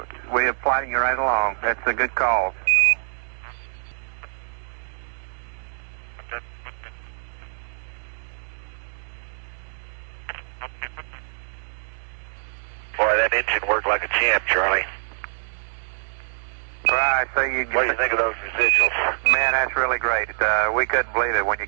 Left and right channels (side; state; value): left; silent; digital silence